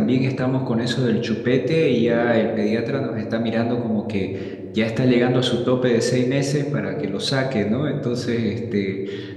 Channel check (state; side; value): identical; both; correlation 1.00